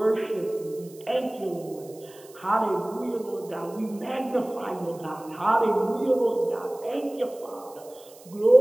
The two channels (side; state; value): right; noise; hiss, 23 dB below the sound